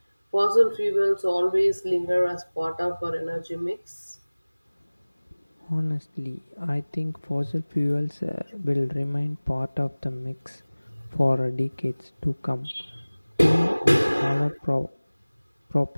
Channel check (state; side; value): inverted; both; correlation -1.00